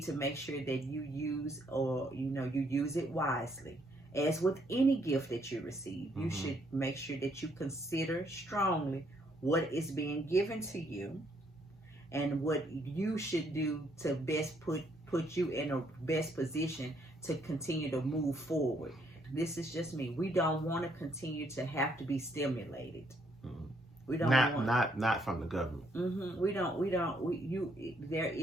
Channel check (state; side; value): normal; both; correlation 0.70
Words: to make sure that you use you use it wisely. As with any gift that you receive, you should make sure that you consider strongly what is being given to you and what you should do to best put you in a best position to continue to move forward. This is just me. We don't want to continue to have to be stimulated. We don't not from the government. We don't. There